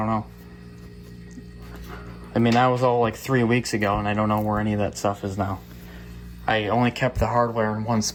know. I mean, that was all like 3 weeks ago, and I don't know where any of that stuff is now. I only kept the hardware in one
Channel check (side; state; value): both; identical; correlation 1.00